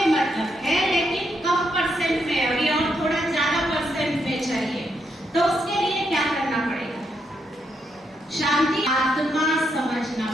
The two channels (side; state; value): both; normal; correlation 0.79